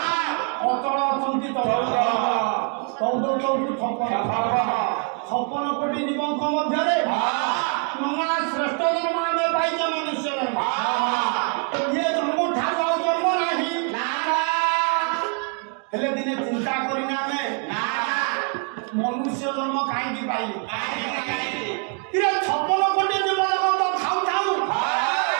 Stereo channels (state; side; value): quieter; left; 37.9 dB